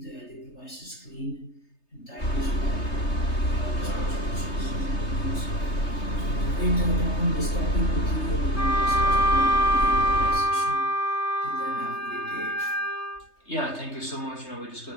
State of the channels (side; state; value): right; late; 3.3 ms